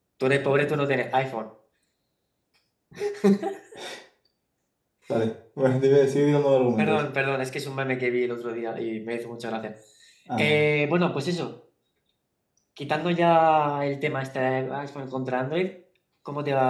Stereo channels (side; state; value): both; identical; correlation 1.00